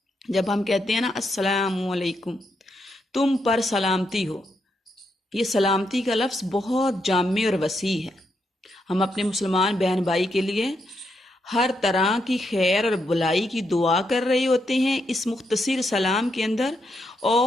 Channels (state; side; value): normal; both; correlation 0.81